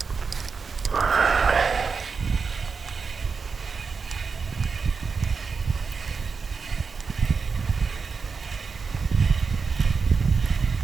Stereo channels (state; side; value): quieter; left; 5.2 dB